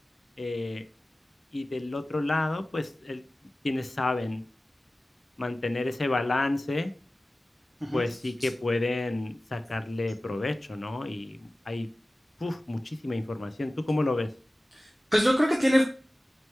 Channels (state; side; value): normal; both; correlation 0.96